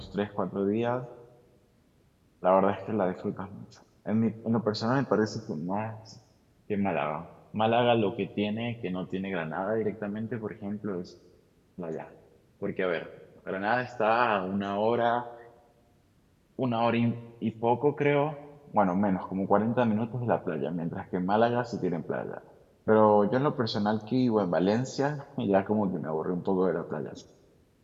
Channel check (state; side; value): identical; both; correlation 1.00